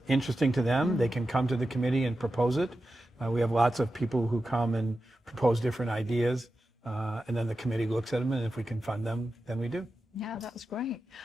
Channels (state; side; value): normal; both; correlation 0.91